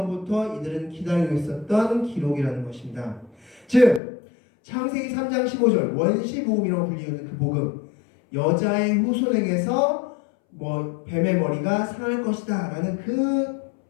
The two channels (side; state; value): right; drops out; at 4.0 s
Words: 이들은 기다리고 있었던 기록이라는 것입니다. 즉 창세기 3장 15절 원시복음이라고 불리는 그 복음, 여자의 후손에게서 뱀의 머리가 상할 것이다 라는 그